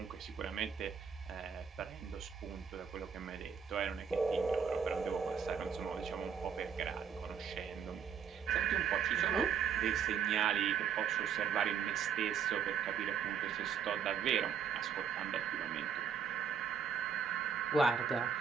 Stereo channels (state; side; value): quieter; left; 7.2 dB